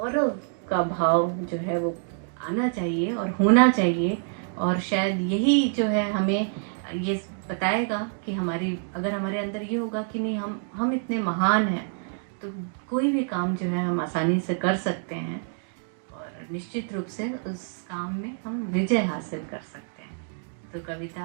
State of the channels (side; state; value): left; silent; digital silence